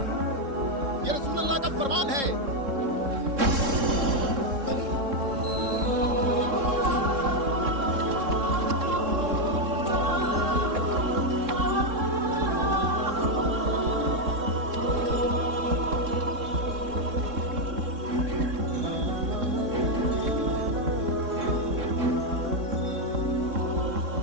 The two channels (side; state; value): left; late; 3.7 ms